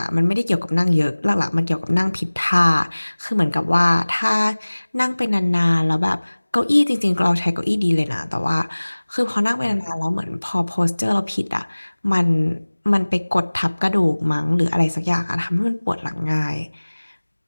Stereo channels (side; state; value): both; inverted; correlation -1.00